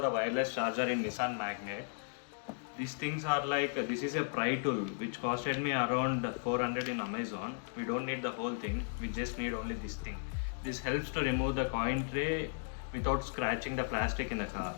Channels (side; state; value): right; silent; digital silence